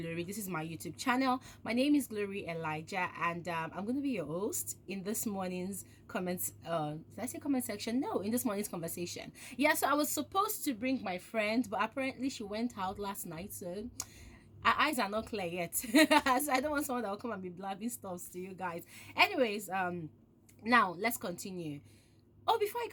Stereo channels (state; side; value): identical; both; correlation 1.00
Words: This is my YouTube channel. My name is Glory Elijah, and I'm going to be your host in this morning's comments. Did I say comment section? No, in this morning's conversation. Yeah, so I was supposed to bring my friend, but apparently she went out last night, so our eyes are not clear yet. So I don't want someone that will come and be blabbing stuff to you guys. Anyways, now let's continue. Oh, before I